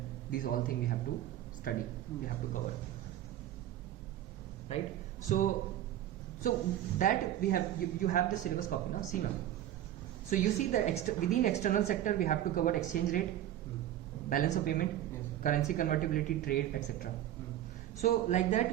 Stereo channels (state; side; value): quieter; left; 12.3 dB